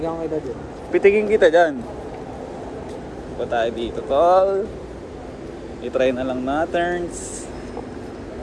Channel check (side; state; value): both; identical; correlation 1.00